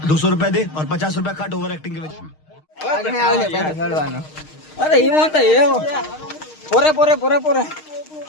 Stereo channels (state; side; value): late; right; 6.5 ms